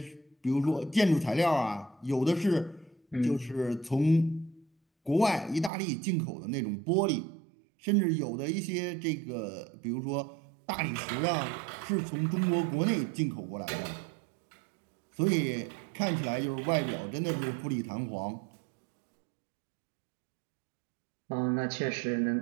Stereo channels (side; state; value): left; drops out; at 5.7 s